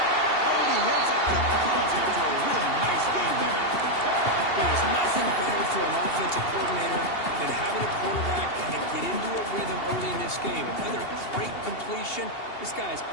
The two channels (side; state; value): right; late; 2.8 ms